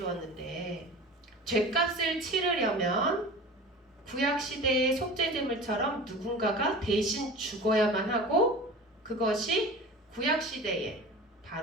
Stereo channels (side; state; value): both; normal; correlation 0.36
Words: 죄값을 치르려면 구약시대의 속죄제물처럼 누군가가 대신 죽어야만 하고, 그것이 구약시대에